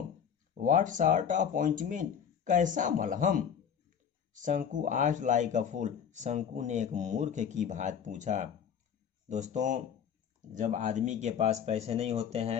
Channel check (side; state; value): right; quieter; 7.9 dB